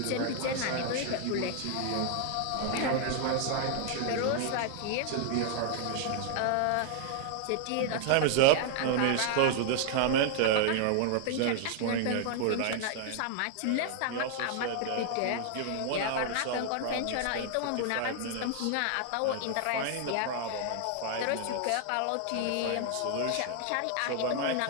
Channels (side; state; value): both; different; correlation 0.00